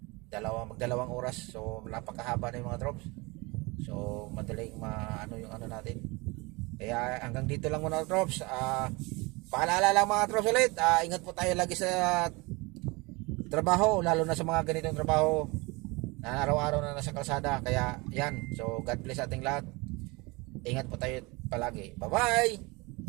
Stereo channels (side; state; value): left; quieter; 25.5 dB